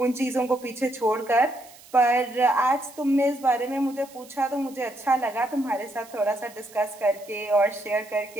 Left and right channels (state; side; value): noise; right; hiss, 22 dB below the sound